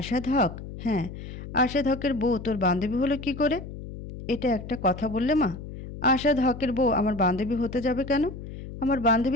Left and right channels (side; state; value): left; noise; hum, 11 dB below the sound